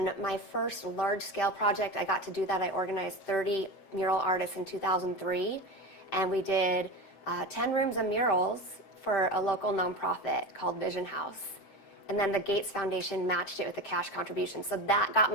my first large-scale project, I got to do that. I organized 30 mural artists in 2003. And we did 10 rooms of murals for a local nonprofit called Vision House. And then the Gates Foundation matched it with a cash contribution. So that got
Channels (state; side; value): late; right; 7.7 ms